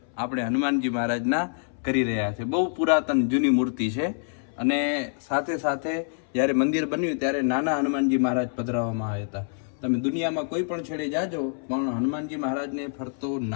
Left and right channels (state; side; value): silent; right; 61 dB below the other